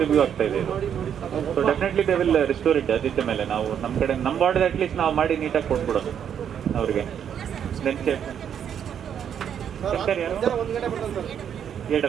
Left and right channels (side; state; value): left; quieter; 8.6 dB